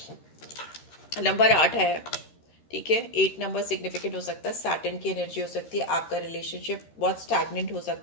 नंबर 8 है, ठीक है। 8 नंबर सिग्निफिकेंट हो सकता है, सैटर्न की एनर्जी हो सकती है, आपका रिलेशनशिप बहुत स्टैग्नेंट हो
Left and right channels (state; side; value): late; right; 13 ms